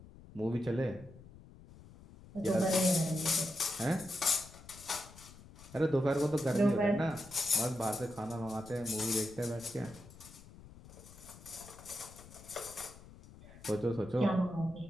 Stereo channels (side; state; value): left; noise; rumble, 19 dB below the sound